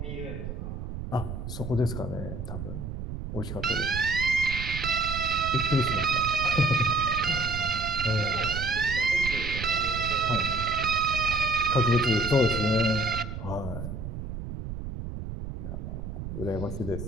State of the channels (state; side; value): noise; right; rumble, 7 dB below the sound